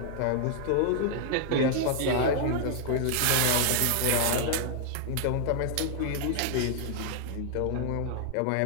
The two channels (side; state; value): both; different; correlation 0.00